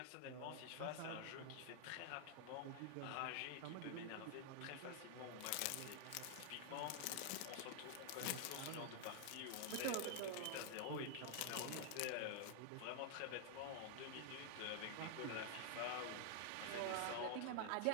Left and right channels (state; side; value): different; both; correlation 0.00